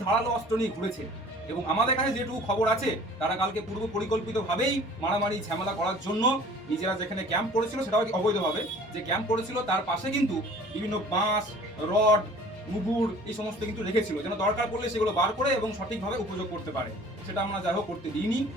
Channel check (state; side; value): normal; both; correlation 0.48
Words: ধারালো অস্ত্র নিয়ে ঘুরেছে। এবং আমাদের কাছে যেটুকু খবর আছে, তারা কালকে পূর্ব পরিকল্পিতভাবেই মারামারি ঝামেলা করার জন্য নিজেরা যেখানে ক্যাম্প করেছিল, সেটাও অবৈধভাবে যে ক্যাম্প করেছিল, তার পাশে কিন্তু বিভিন্ন বাঁশ, রড, মুগুর এই সমস্ত কিন্তু রেখেছিল, যেন দরকার পড়লে সেগুলো বার করে এবং সঠিকভাবে উপযোগ করতে পারে। সেটা আমরা যাই হোক করতে দিইনি।